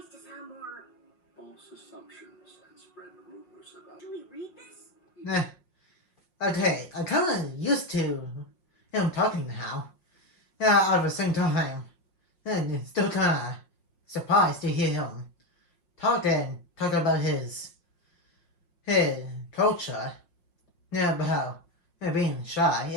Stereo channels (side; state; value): right; late; 5.6 ms